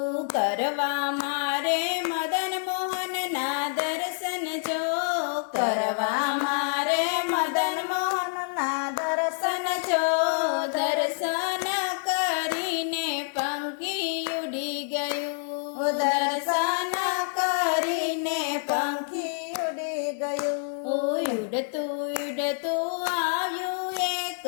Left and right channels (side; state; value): right; silent; 60 dB below the other